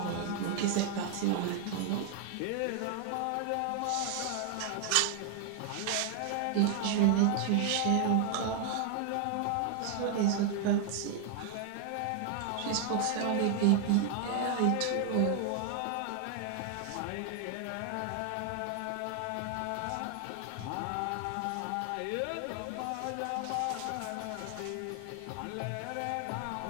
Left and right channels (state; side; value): different; both; correlation 0.00